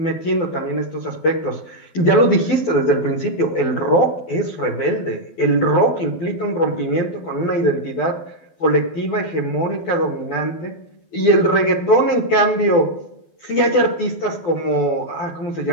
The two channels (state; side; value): late; right; 12 ms